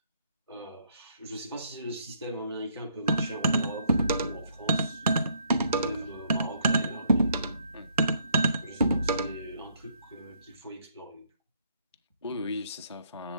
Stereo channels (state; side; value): inverted; both; correlation -0.69